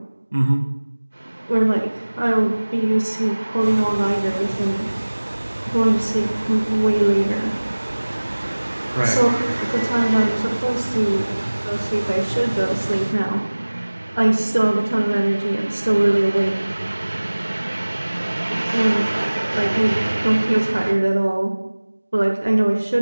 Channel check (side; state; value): both; inverted; correlation -1.00